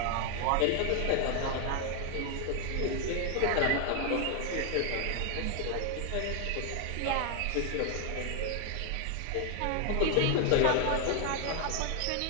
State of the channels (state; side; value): different; both; correlation 0.00